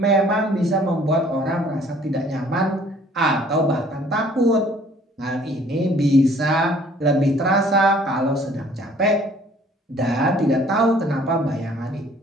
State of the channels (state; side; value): normal; both; correlation 0.57